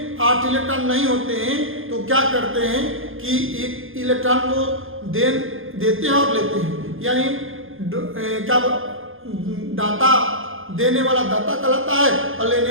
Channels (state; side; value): late; left; 0.59 ms